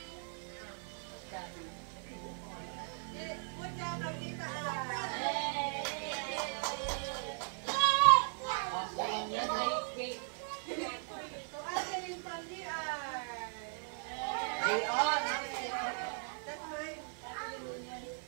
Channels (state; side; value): silent; left; 53 dB below the other